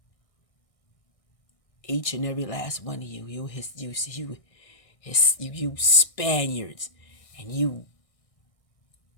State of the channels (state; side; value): late; right; 1.6 ms